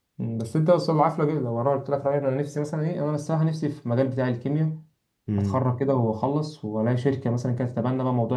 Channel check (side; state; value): both; identical; correlation 1.00